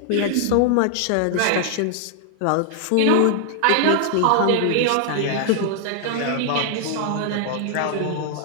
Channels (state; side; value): different; both; correlation 0.00